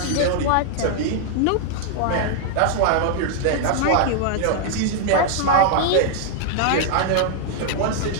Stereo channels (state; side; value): different; both; correlation 0.00